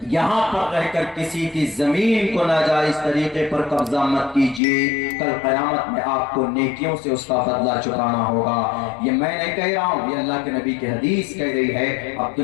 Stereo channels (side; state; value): right; drops out; at 4.6 s